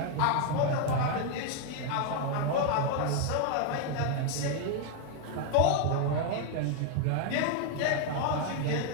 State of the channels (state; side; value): different; both; correlation 0.01